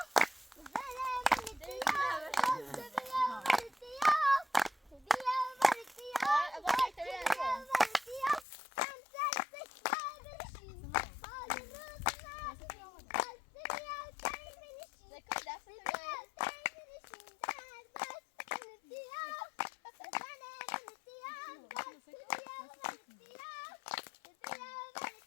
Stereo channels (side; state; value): right; drops out; at 8.5 s